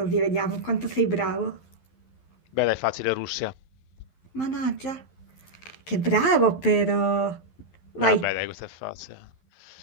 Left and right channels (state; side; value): late; right; 11 ms